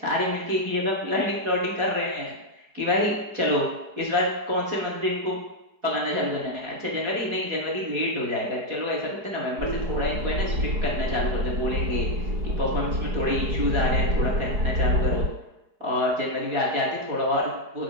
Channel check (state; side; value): late; left; 4.7 ms